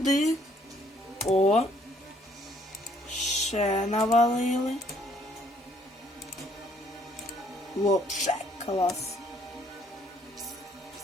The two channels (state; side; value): normal; both; correlation 0.64